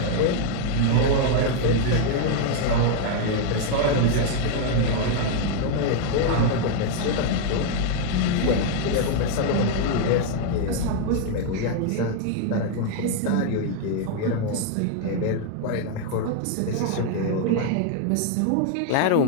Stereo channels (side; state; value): both; different; correlation 0.00